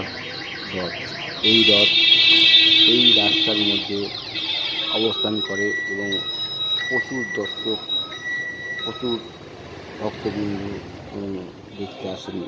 রথ। এই রথ এই রাস্তার মধ্যে অবস্থান করে এবং প্রচুর দর্শক, প্রচুর ভক্তবিন্দু এবং দেখতে আসেন,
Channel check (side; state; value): both; identical; correlation 1.00